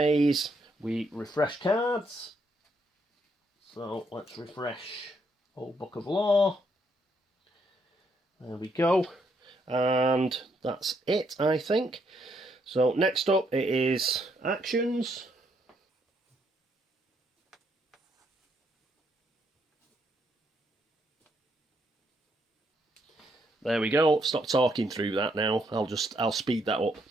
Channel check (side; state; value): both; normal; correlation 0.74